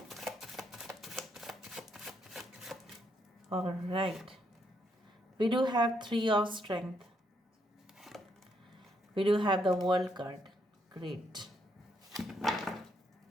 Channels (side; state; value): both; normal; correlation 0.75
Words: All right. We do have 3 of strength. We do have the world card. Great.